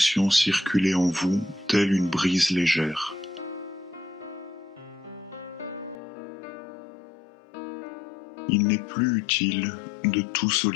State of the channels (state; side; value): drops out; right; at 6.0 s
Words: circuler en vous telle une brise légère. Il n'est plus utile de tout